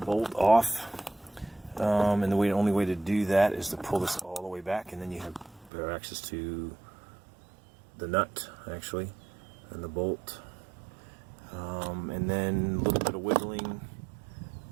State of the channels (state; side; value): drops out; left; at 5.7 s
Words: off, and the only way to do that is to pull this all the way back, and then you have better access to the nut, actually, and the bolt, and then a little bit of wiggling,